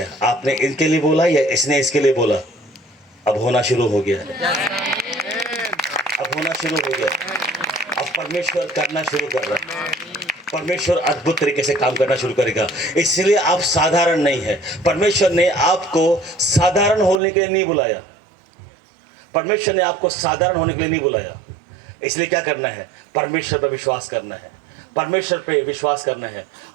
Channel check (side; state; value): left; drops out; at 17.2 s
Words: आपने इनके लिए बोला या इसने इसके लिए बोला, अब होना शुरू हो गया है। होना शुरू हो गया। अब परमेश्वर करना शुरू कर रहा है। परमेश्वर अद्भुत तरीके से काम करना शुरू करेगा। इसलिए आप साधारण नहीं है। परमेश्वर ने आपको साधारण होने के लिए नहीं बुलाया। परमेश्वर ने आपको साधारण होने के लिए नहीं बुलाया। इसलिए क्या करना है? परमेश्वर पर विश्वास करना है। परमेश्वर पे विश्वास करना है।